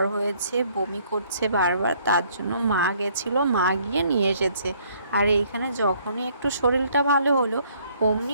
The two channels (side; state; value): both; inverted; correlation -0.63